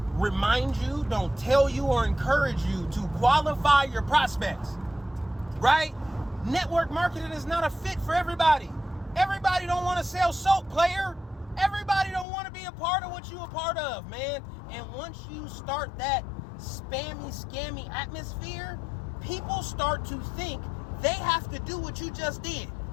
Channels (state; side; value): drops out; right; at 12.2 s